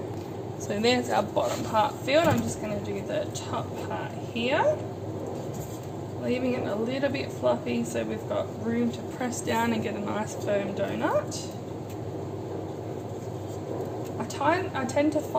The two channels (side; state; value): both; identical; correlation 1.00